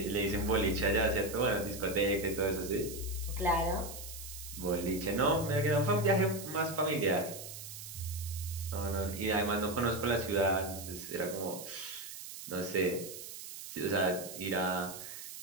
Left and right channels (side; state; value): right; noise; hiss, 11 dB below the sound